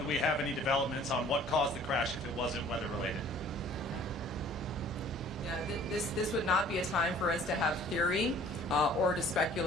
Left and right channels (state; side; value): normal; both; correlation 0.52